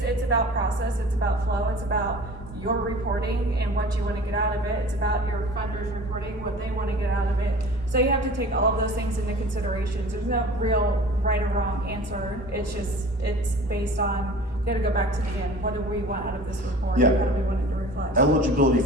about process, it's about flow, it's about your reporting and what you want to get out of it. It's about your funders reporting what they want to get out of it. So you have to take all of those things into consideration. There's no real right or wrong answer. It's based on, you gotta go back to the end. What do we want out of this report? Yeah. How do we want it to reflect? Eligibility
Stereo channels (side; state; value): both; normal; correlation 0.42